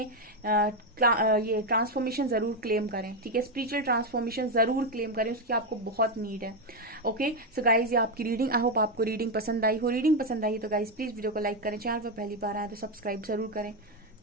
ये ट्रांसफॉर्मेशन जरूर क्लेम करें, ठीक है। स्पिरिचुअल ट्रांसफॉर्मेशन जरूर क्लेम करें, उसकी आपको बहुत नीड है। ओके सो गाइज, ये आपकी रीडिंग, आई होप आपको रीडिंग पसंद आई हो। रीडिंग पसंद आई तो गाइज प्लीज वीडियो को लाइक करें, चैनल पर पहली बार आए तो सब्सक्राइब जरूर करें।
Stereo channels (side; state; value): both; normal; correlation 0.06